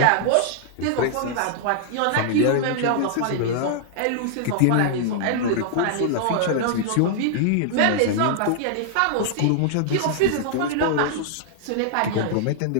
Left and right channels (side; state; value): both; different; correlation -0.01